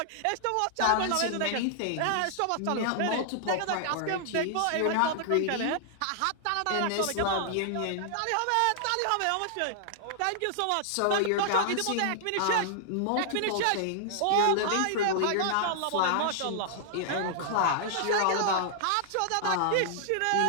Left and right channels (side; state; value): both; different; correlation -0.01